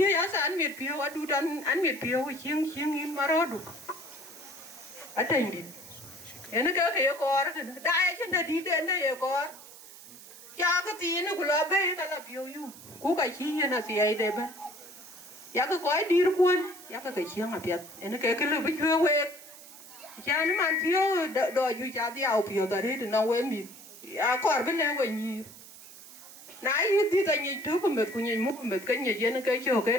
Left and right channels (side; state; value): right; noise; hiss, 18 dB below the sound